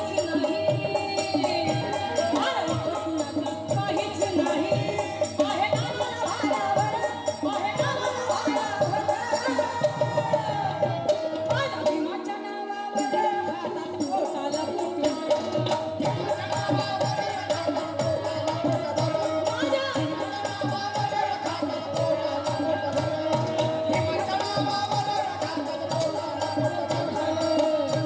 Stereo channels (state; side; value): identical; both; correlation 1.00